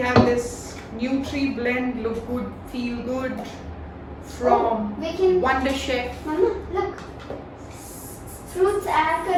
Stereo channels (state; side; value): identical; both; correlation 1.00